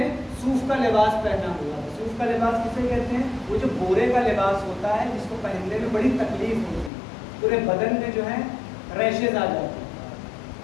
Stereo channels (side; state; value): right; drops out; at 6.9 s